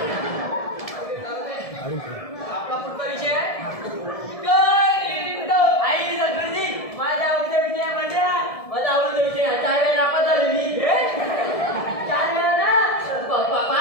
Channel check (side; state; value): right; late; 1.7 ms